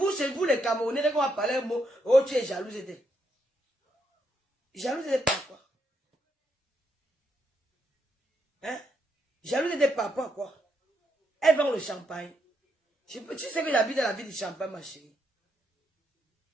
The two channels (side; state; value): both; normal; correlation 0.78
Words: chez vous, les Camerounais, quand on va parler un mot, oh, tu es jalouse. Jalouse par quoi? Hein? Jalouse par quoi? Elle vend le champagne. Tu sais que j'habite dans la ville de Champagne, ma chérie.